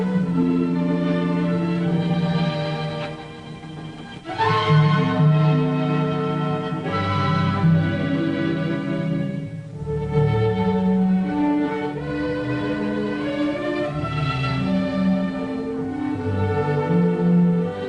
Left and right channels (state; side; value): identical; both; correlation 1.00